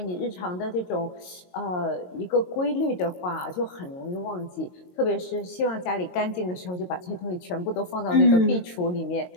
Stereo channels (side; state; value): right; late; 22 ms